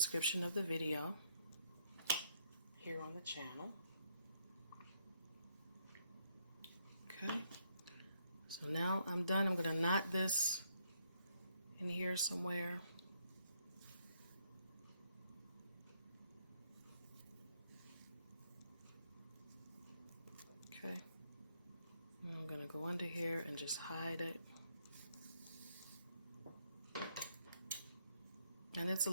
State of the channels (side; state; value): both; inverted; correlation -0.73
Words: of the video here on the channel. Okay, so now I'm done. I'm going to knot this in here somewhere. Okay, and I'm going to go under here and just hide it. And it's a